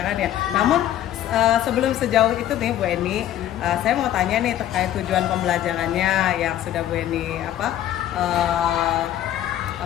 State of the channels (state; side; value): quieter; right; 12.1 dB